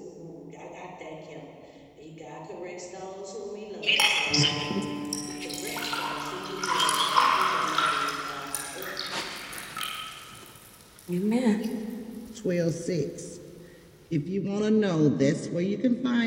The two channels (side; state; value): both; identical; correlation 1.00